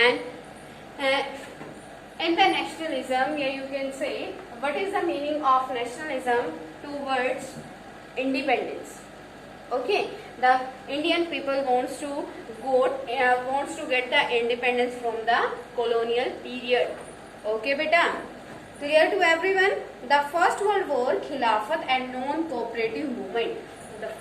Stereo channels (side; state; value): both; identical; correlation 1.00